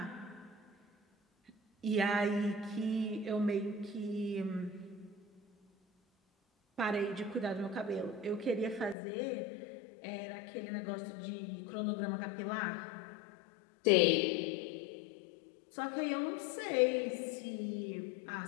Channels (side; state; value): right; drops out; at 9.0 s